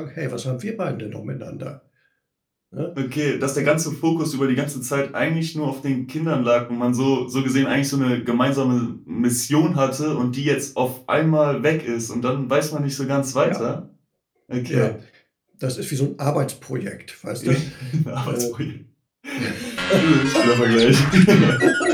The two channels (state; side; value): identical; both; correlation 1.00